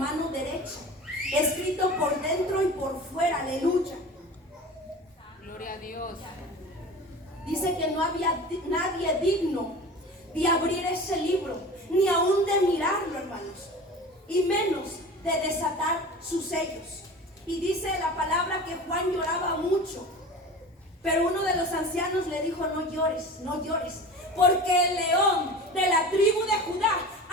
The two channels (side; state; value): both; normal; correlation 0.36